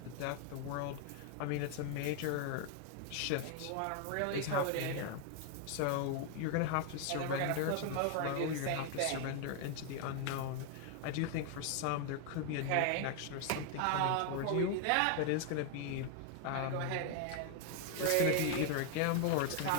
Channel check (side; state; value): both; different; correlation 0.01